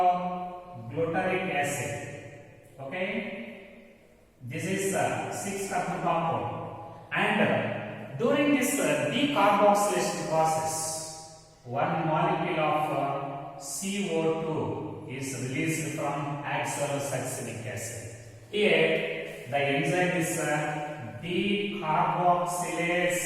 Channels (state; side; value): identical; both; correlation 1.00